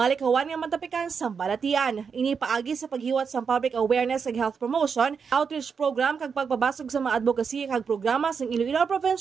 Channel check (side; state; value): left; quieter; 6.1 dB